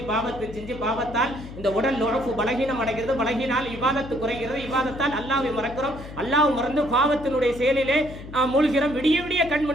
பாவத்தை செஞ்சு பாவத்தால் இந்த உடல் நுழப்பு பலகீனம் அடைகிறது. பலகீனால் இபாதத்து குறைகிறது. இபாதத்தால் அல்லாஹ்வை மறக்கிறோம். அல்லாஹ் மறந்து பாவத்தினுடைய செயலிலே மூழ்கிறோம். விடிய விடிய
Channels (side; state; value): left; noise; hum, 13 dB below the sound